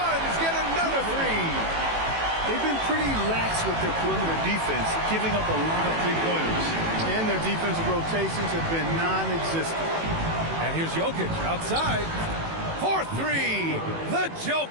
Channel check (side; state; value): left; late; 18 ms